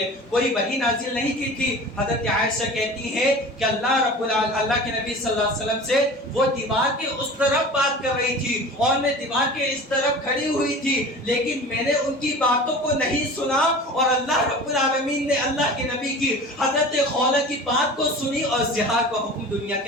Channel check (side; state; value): both; normal; correlation 0.38